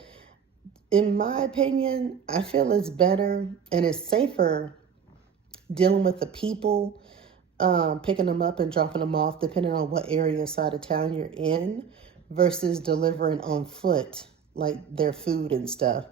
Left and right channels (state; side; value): quieter; left; 7.2 dB